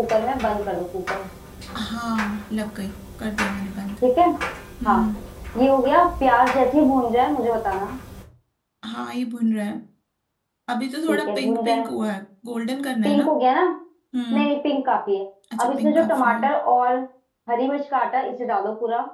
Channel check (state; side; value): identical; both; correlation 1.00